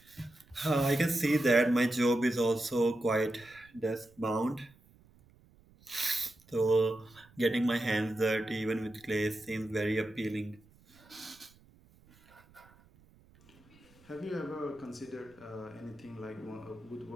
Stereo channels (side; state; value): right; noise; rumble, 28 dB below the sound